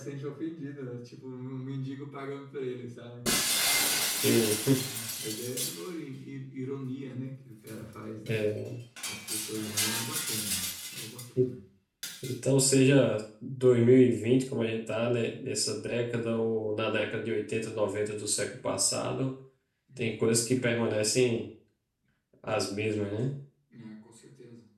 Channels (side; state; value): both; identical; correlation 1.00